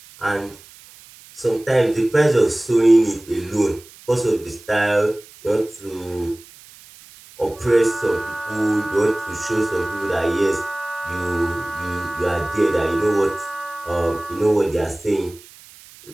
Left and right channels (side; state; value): right; noise; hiss, 22 dB below the sound